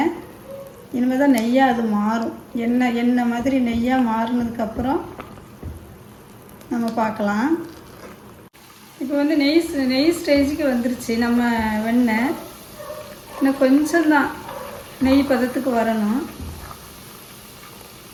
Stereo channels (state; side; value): identical; both; correlation 1.00